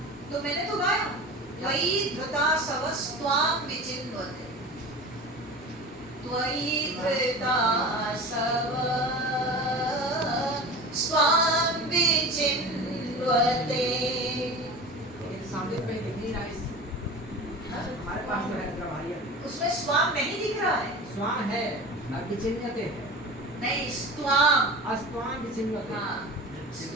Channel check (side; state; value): both; normal; correlation 0.33